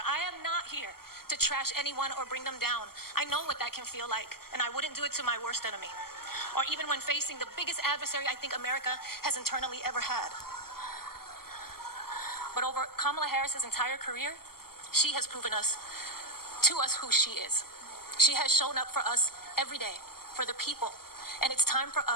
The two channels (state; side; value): late; right; 0.94 ms